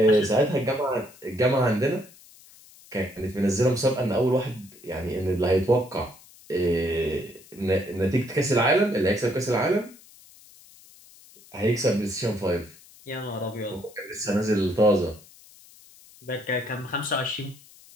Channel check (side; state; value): left; noise; hiss, 24 dB below the sound